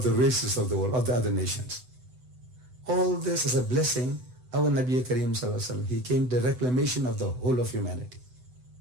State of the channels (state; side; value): late; left; 8.0 ms